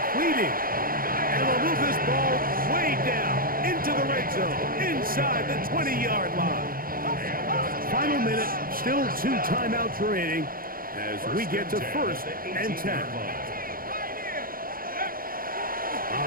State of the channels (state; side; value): late; left; 0.42 ms